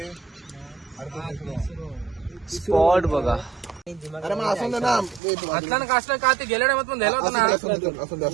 स्पॉट बघा. अरे मग असं ना असला कासला का ते गेल्या टायमात पण द्यायला होता ना.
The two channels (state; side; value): drops out; left; at 5.2 s